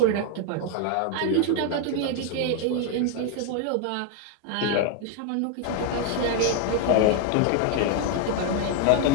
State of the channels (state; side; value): different; both; correlation 0.01